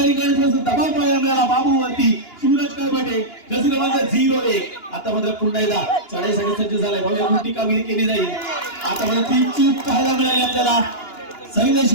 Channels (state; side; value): late; right; 2.9 ms